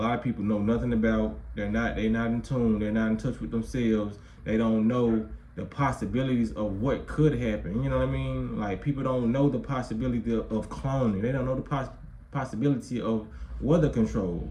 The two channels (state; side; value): identical; both; correlation 1.00